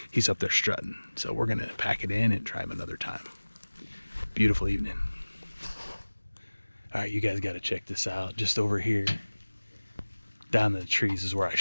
he's up there strutting. So we're gonna pack it in and try him another time. Beautiful evening. All right, you guys gotta check this out. Just over here, down the trees is where I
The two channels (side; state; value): both; inverted; correlation -1.00